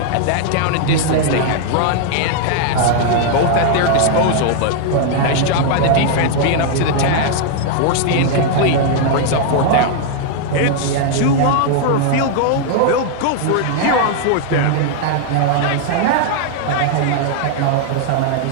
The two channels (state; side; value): different; both; correlation 0.00